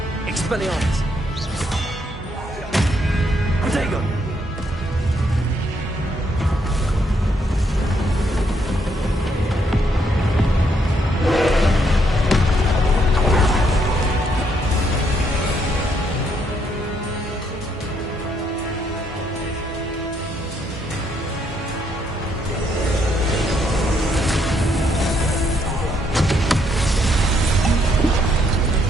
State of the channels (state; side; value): normal; both; correlation 0.73